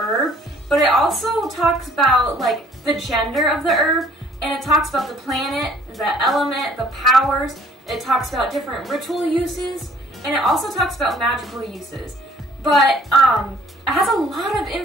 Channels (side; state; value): both; normal; correlation 0.57